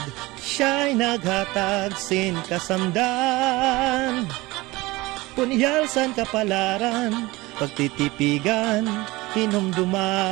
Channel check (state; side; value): quieter; left; 21.0 dB